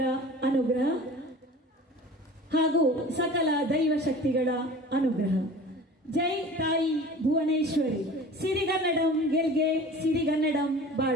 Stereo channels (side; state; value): both; normal; correlation 0.40